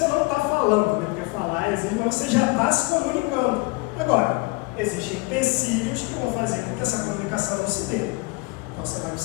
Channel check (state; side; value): quieter; right; 25.9 dB